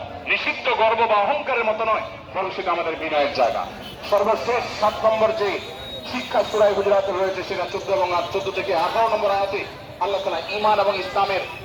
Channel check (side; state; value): both; identical; correlation 1.00